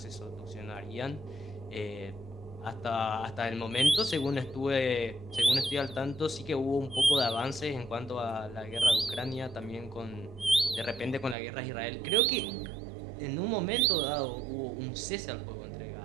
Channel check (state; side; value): drops out; left; at 11.4 s